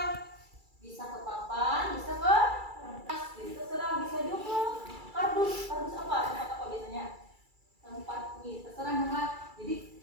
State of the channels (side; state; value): left; late; 2.3 ms